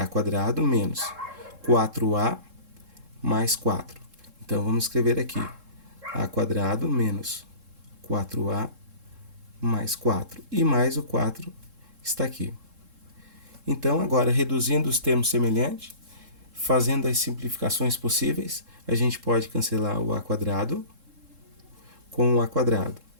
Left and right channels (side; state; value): left; late; 3.7 ms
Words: quadrado menos 4A mais 4. Então, vamos escrever aqui A quadrado menos 4A mais 4. E mais o 4 está aqui. Então, agora, reduzindo os termos semelhantes, Fazendo as simplificações possíveis, a gente pode cancelar o a quadrado com o a quadrado.